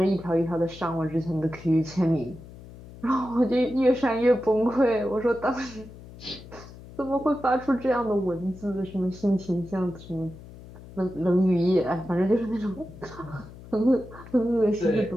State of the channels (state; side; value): noise; left; hum, 17 dB below the sound